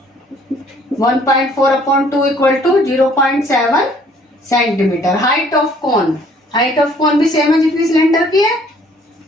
1.4/2 equal to 0.7 centimeter. Height of cone, height of cone भी सेम है जितनी सिलेंडर की है,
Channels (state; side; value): normal; both; correlation 0.59